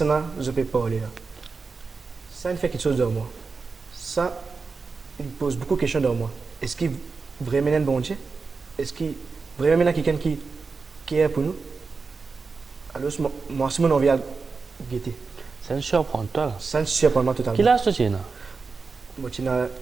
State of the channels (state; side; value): quieter; left; 4.6 dB